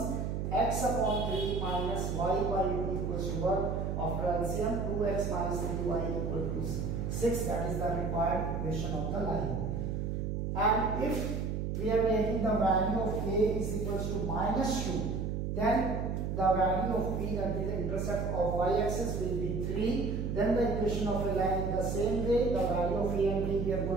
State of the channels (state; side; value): noise; right; hum, 2 dB below the sound